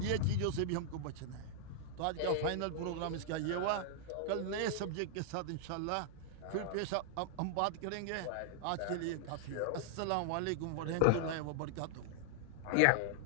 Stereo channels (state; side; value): different; both; correlation 0.00